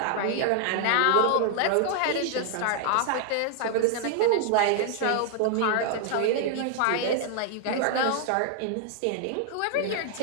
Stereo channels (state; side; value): different; both; correlation 0.00